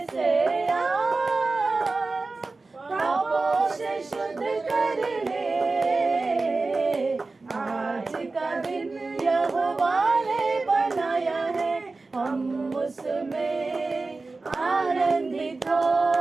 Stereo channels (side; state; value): left; quieter; 3.6 dB